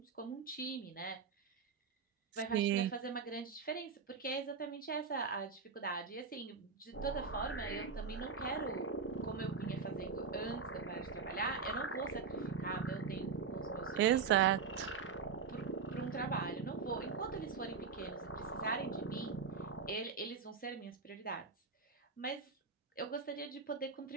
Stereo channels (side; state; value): left; quieter; 5.5 dB